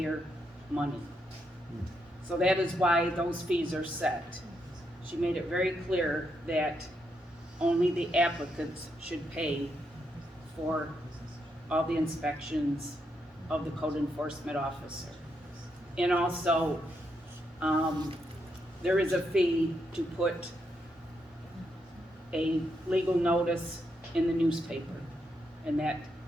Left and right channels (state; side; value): normal; both; correlation 0.80